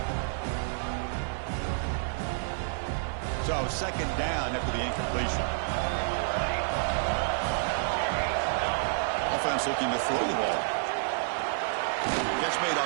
So second down after the incompletion. Offense looking to throw the ball. Catch made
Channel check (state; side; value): silent; left; 58 dB below the other